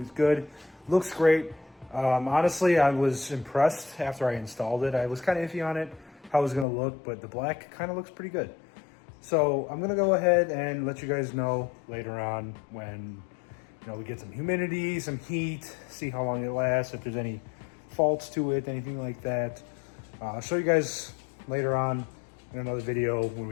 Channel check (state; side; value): drops out; right; at 6.7 s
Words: good, looks great. Honestly, I was impressed after I installed it. I was kind of iffy on it, how it was gonna look, but the black kind of looks pretty good. So I'm gonna go ahead and let you guys know later on when we get some humidity, some heat, see how long it lasts, if there's any faults to it, anything like that. I'll show you guys later on in another video when